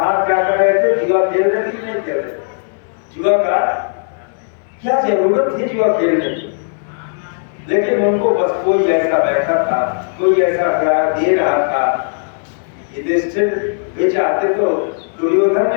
क्या कर रहे थे? जुआ खेल रहे थे, नहीं खेल रहे? जुआ का क्या जरूरत थी जुआ खेलने की? लेकिन उनको बस कोई ऐसा बैठा था, कोई ऐसा ग्राह दे रहा था। युधिष्ठिर भी चाहते तो दुर्योधन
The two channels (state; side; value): silent; right; digital silence